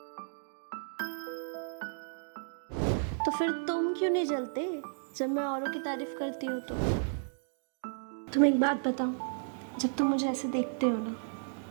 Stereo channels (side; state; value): left; silent; digital silence